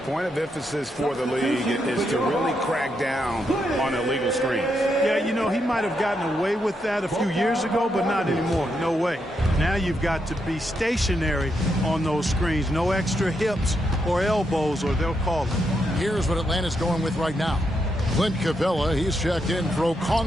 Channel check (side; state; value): both; normal; correlation 0.81